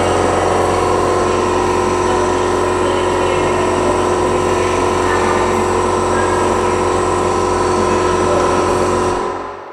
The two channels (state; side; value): identical; both; correlation 1.00